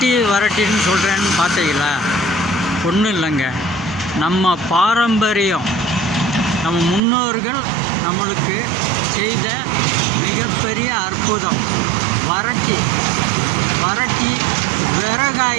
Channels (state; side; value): drops out; left; at 7.0 s